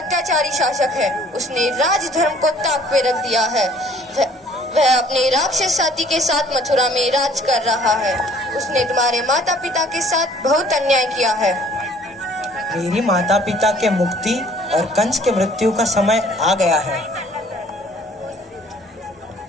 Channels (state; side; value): normal; both; correlation 0.56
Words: शासक है। उसने राजधर्म को ताक पे रख दिया है। वह अपने राक्षस साथी के साथ मथुरा में राज कर रहा है। उसने तुम्हारे माता पिता के साथ बहुत अन्याय किया है। मेरी माता पिता के मुक्ति और कंस के मृत्यु का समय आ गया है।